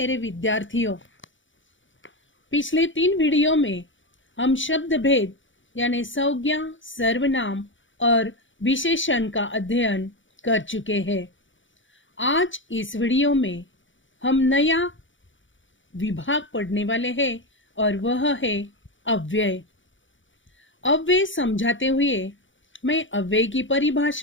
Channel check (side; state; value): right; late; 0.56 ms